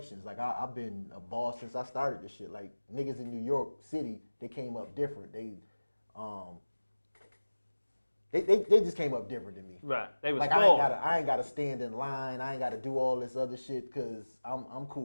Like I've been a boss since I started this shit. Like niggas in New York City, they came up different. They just came up different than me. Right. They was like I ain't gotta stand in line. I ain't gotta do all this other shit because I'm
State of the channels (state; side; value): inverted; both; correlation -1.00